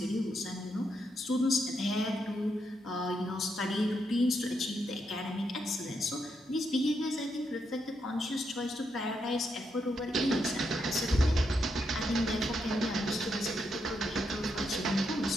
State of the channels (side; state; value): both; normal; correlation 0.81